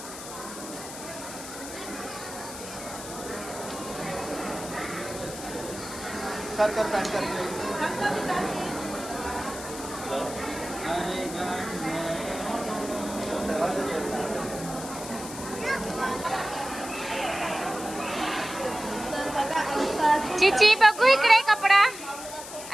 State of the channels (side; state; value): left; noise; hiss, 11 dB below the sound